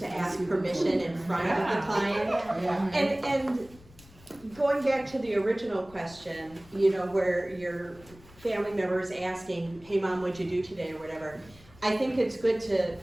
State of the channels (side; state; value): left; noise; rumble, 24 dB below the sound